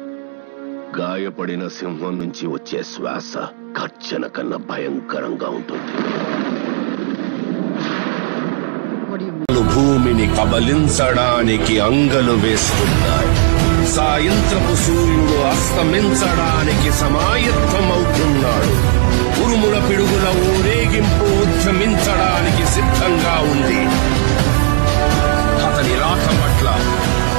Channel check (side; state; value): left; silent; digital silence